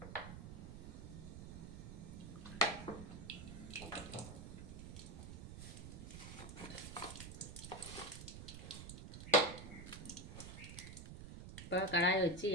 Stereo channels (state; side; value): noise; right; rumble, 10 dB below the sound